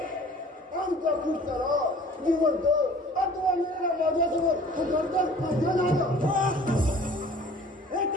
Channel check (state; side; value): normal; both; correlation 0.49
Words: आमच्या कृष्णाला जिवंत अथवा मेला माझ्यासोबत उतरतात माझ्या नाला हे